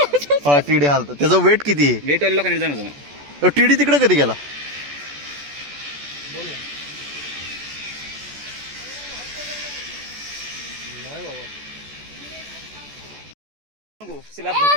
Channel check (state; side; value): late; left; 14 ms